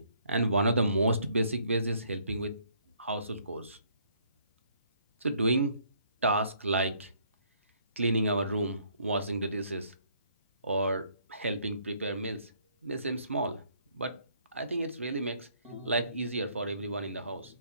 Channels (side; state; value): both; inverted; correlation -0.65